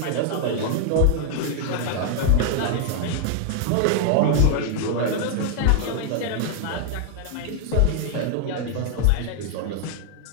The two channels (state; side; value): different; both; correlation 0.00